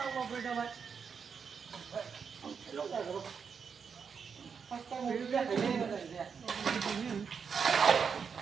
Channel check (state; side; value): quieter; left; 6.2 dB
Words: mau beda mat. Lo enggak tahu. Pasti mau beda ini ada dia.